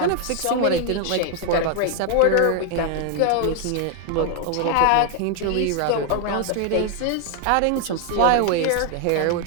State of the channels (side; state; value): both; different; correlation 0.00